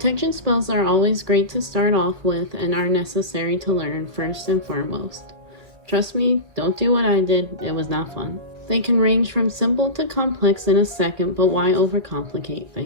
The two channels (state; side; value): late; left; 1.9 ms